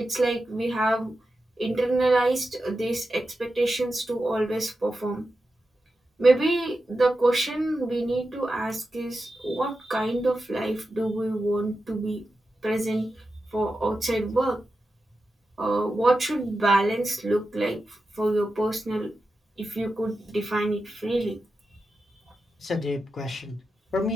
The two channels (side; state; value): both; normal; correlation 0.91